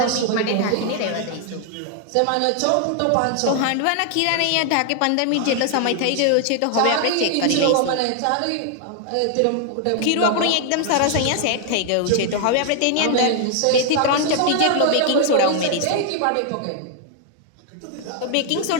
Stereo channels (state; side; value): different; both; correlation 0.00